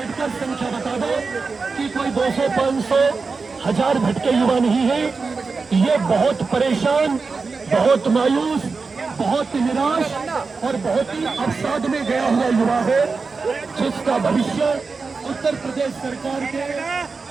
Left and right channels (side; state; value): left; quieter; 4.5 dB